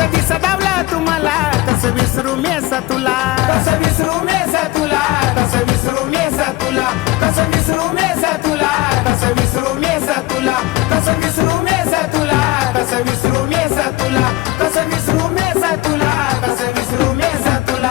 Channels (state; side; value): quieter; right; 19.2 dB